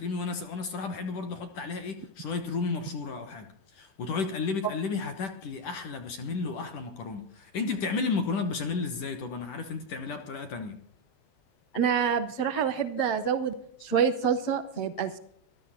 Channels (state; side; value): late; right; 10 ms